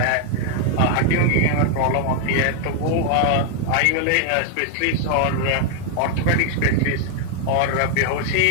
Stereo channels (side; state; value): both; different; correlation 0.00